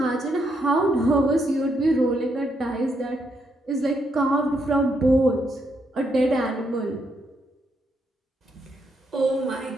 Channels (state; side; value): normal; both; correlation 0.77